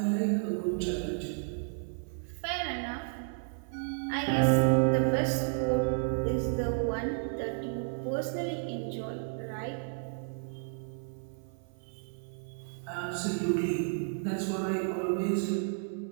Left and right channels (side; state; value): left; silent; 56 dB below the other